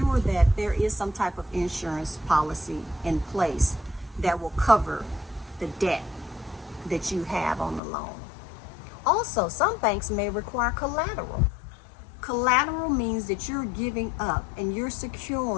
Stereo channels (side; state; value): right; drops out; at 7.8 s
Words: that there is some type of insurance policy in place that will cover the debt that you have on the loan. Also, some banks may require collateral. Collateral means that you're giving up and you're